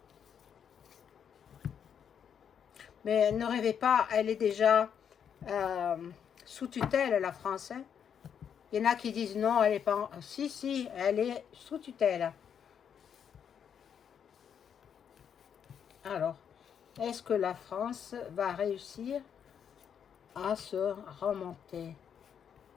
Mais ne rêvez pas, elle est déjà sous tutelle, la France. Hein. Il y en a qui disent non, elle est pas... Si, si, elle est sous tutelle. Alors, est-ce que la France va réussir à se remonter?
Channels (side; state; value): right; quieter; 8.0 dB